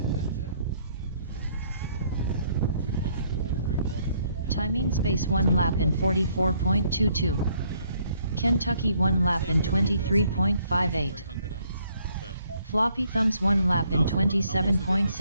Timing space 1 lap in 44.22. Kentucky 1 lap in 23.58. Floppy thumbs 1 lap in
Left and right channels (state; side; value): inverted; both; correlation -0.67